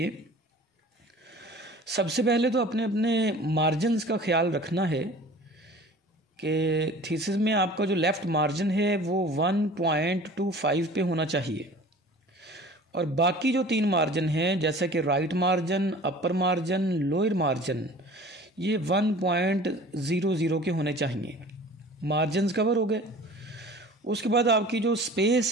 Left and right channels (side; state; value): both; normal; correlation 0.44